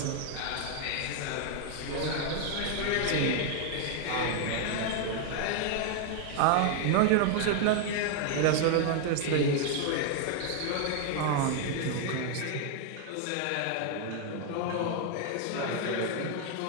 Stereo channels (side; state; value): both; different; correlation 0.00